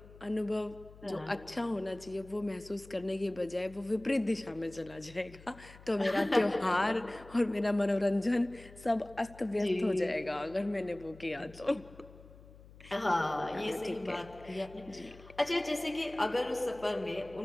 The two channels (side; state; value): left; noise; hum, 20 dB below the sound